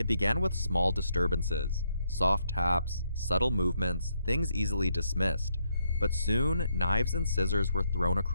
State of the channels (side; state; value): both; inverted; correlation -0.76